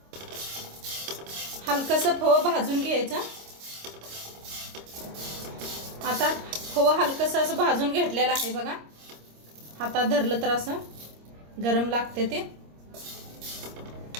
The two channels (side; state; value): left; late; 26 ms